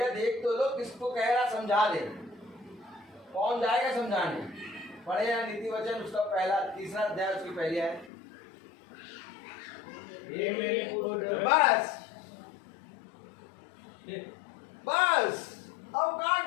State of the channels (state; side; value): drops out; right; at 8.1 s